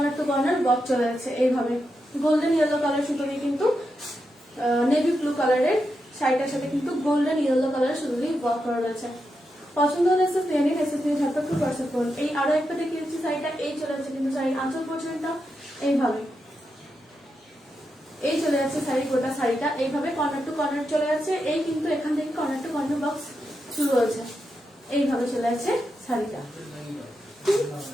টু কর্নার বক্স চলে যাচ্ছে, এইভাবে গোল্ডেন ইয়েলো কালার সুতো দিয়ে কিন্তু নেভি ব্লু কালারের শাড়িটার সাথে কিন্তু গোল্ডেন ইয়েলো কালার সুতো দিয়ে ওয়ার্ক করা রয়েছে। পছন্দ হলে এসে ফিরে নিন, এসে ফিরে ঝটপট করে হোয়াটসঅ্যাপ করুন। এই আরো একটা দেখিয়েছি শাড়িটা, এই চলে যাচ্ছে কিন্তু শাড়ির আঁচল পোর্শনটা এইভাবে, এই চলে যাচ্ছে শাড়ি গোটা শাড়িটা এইভাবে কর্নার টু কর্নার চলে যাচ্ছে। এই কিন্তু এখান থেকে কর্নার টু কর্নার বক্স শুরু হয়েছে, এইভাবে চলে যাচ্ছে শাড়িটা,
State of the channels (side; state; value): both; normal; correlation 0.86